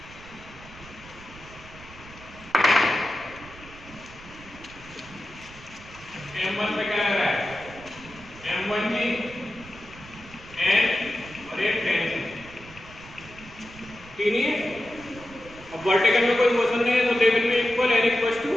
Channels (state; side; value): noise; right; rumble, 19 dB below the sound